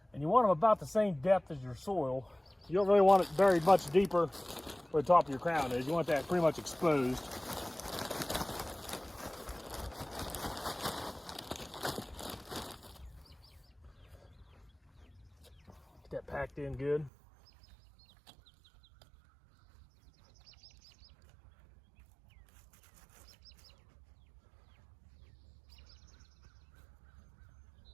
And you want them about the same depth as your soil. You don't really want it very much deeper where the top of your crown is. You want that pretty much exposed. Get that packed in good.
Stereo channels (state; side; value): drops out; left; at 17.1 s